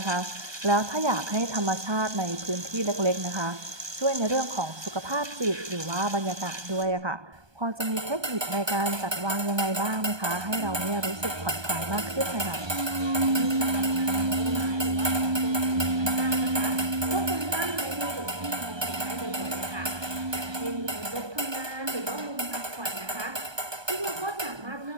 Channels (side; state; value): left; late; 1.2 ms